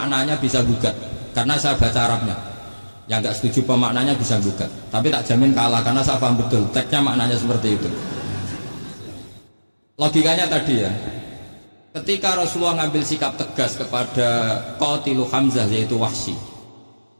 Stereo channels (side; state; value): both; inverted; correlation -1.00